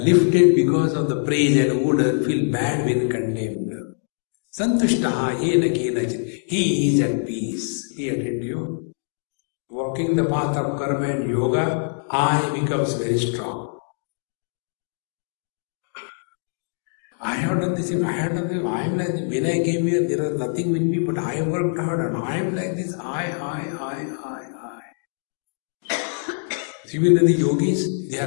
because of the praise and who doesn't feel bad when condemned. Santushtaha Jena Kenachit. He is at peace. He attained you. Walking the path of karma and yoga, I becomes very strong. I have done this, I have done this, I am like this. When I came here, there was nothing with me, but I have worked hard and I am like this. I. See, when the yogis, they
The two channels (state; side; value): silent; right; digital silence